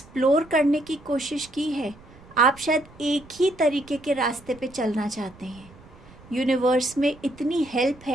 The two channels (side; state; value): right; noise; rumble, 23 dB below the sound